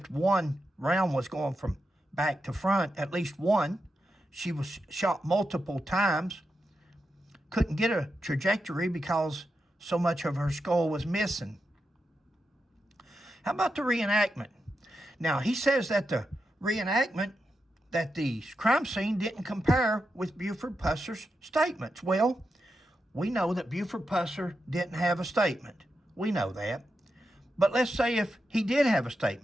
one round was going from back to front, at least one. She was shot multiple times. Couldn't get a trajectory because so much of her skull was missing. How about the reenactment? Now, he says that the reenactment, that the crime scene didn't compare with Buford Pusser's statements. Well, we know that Buford Pusser didn't have a statement. We know that. But let's say if he did have a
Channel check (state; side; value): normal; both; correlation 0.88